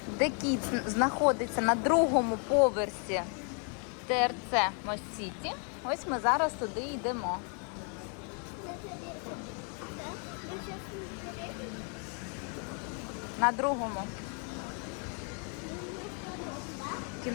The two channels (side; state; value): right; quieter; 40.0 dB